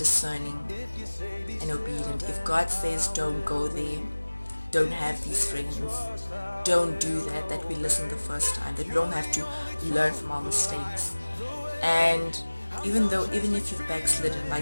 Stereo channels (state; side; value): inverted; both; correlation -1.00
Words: and obedient. If God says don't go there, don't have these friends, don't do that we listen the first time, that we don't have to learn from our mistakes. And even if you've backslidden,